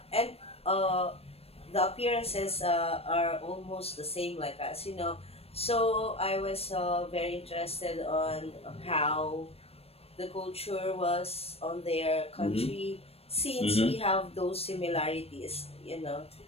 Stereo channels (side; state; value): right; late; 0.29 ms